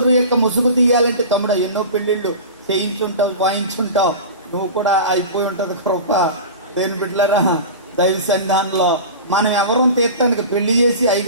యొక్క ముసుగు తీయాలంటే తమ్ముడు ఎన్నో పెళ్లిళ్ళు చేయించుంటావు, వాయించుంటావు, నువ్వు కూడా అయిపోయి ఉంటది కృప. దేని బిడ్డలారా, దైవ సన్నిధానంలో మనం ఎవరం తీర్థానికి పెళ్లి చేసి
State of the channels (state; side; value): inverted; both; correlation -0.33